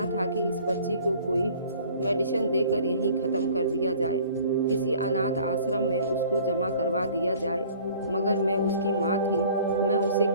था कि इस बच्ची को कोई मेडिसिन देकर यहीं ख़त्म कर दिया जाए, किसी अनाथ आश्रम में उसको जमा करवा दिया जाए। मगर मैं उसकी माँ थी, मैं उसे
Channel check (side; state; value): both; inverted; correlation -0.51